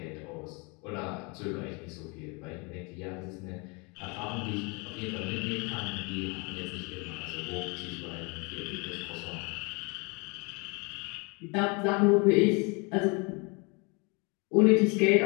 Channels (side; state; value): right; quieter; 30.5 dB